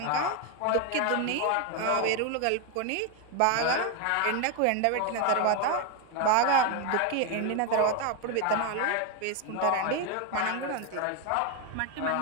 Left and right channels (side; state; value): both; different; correlation 0.01